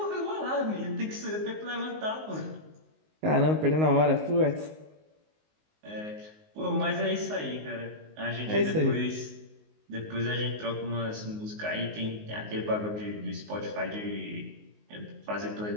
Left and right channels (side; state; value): left; late; 19 ms